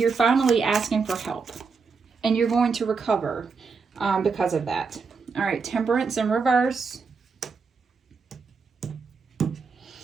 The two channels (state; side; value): quieter; left; 5.0 dB